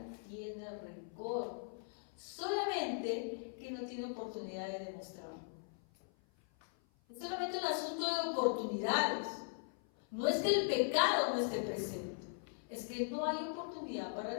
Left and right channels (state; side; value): silent; right; 51 dB below the other